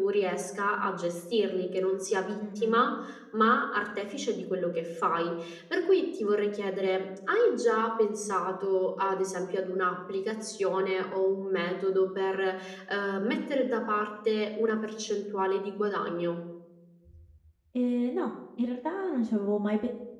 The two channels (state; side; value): identical; both; correlation 1.00